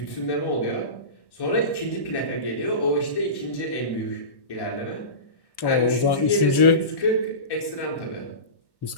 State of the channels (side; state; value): right; late; 1.1 ms